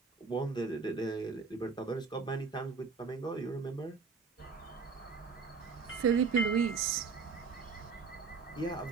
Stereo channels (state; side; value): quieter; left; 5.1 dB